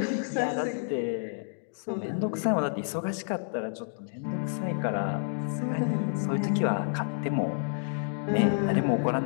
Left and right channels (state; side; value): silent; right; digital silence